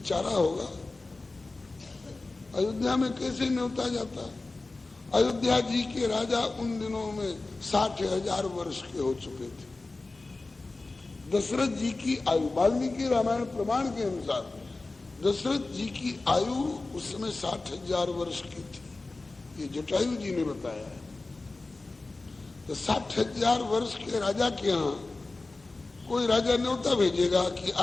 होगा, अयोध्या में कैसे न्योता जाता। अयोध्या जी के राजा उन दिनों में 60,000 वर्ष के हो चुके थे। दशरथ जी की आयु वाल्मीकि रामायण प्रमाण के अनुसार दशरथ जी की आयु उस समय 60,000 वर्ष की थी, ये जटायु जी ने बताया है। तो 60,000 वर्ष के राजा के यहाँ कोई राजा न्योता भेजेगा कि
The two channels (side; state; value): right; quieter; 3.3 dB